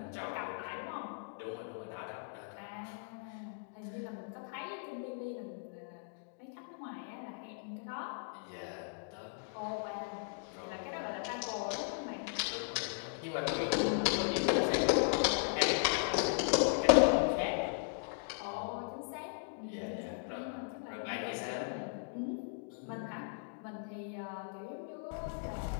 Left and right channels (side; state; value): right; silent; digital silence